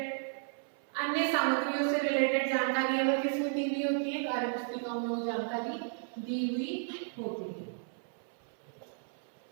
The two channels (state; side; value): silent; left; 55 dB below the other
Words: अन्य सामग्रियों से रिलेटेड जानकारी अगर किसमें दी हुई होती है कार्य पुस्तिकाओं में वो जानकारी दी हुई होती है।